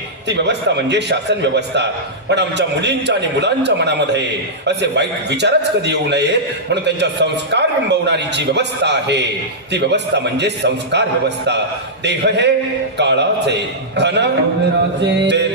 ती व्यवस्था म्हणजे शासन व्यवस्था। पण आमच्या मुलींच्या आणि मुलांच्या मनामध्ये असे वाईट विचारच कधी येऊ नये म्हणून त्यांच्या संस्कार बिंबवणारी जी व्यवस्था आहे ती व्यवस्था म्हणजे संस्कार व्यवस्था। देह हे काळाचे, धन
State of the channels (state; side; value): normal; both; correlation -0.12